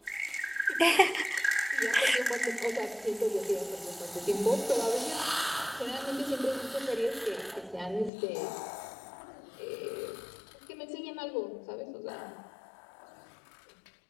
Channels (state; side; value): drops out; right; at 8.1 s